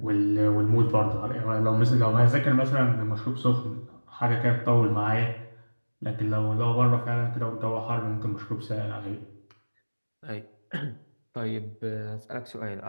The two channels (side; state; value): both; inverted; correlation -1.00